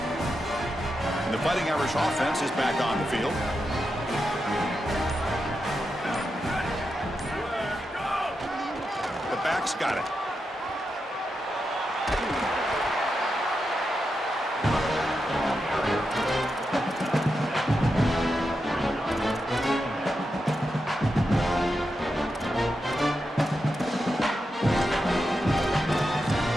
And the Fighting Irish offense is back on the field. The back's got it.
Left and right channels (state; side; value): normal; both; correlation 0.87